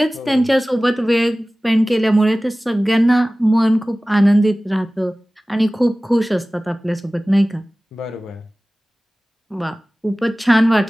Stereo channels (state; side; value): normal; both; correlation 0.98